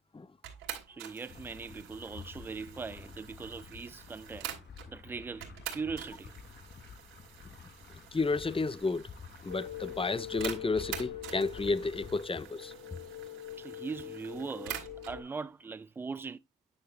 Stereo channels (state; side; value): normal; both; correlation 0.61